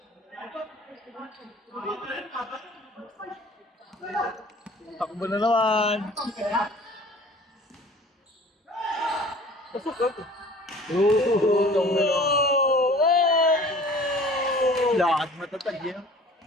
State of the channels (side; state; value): both; normal; correlation 0.47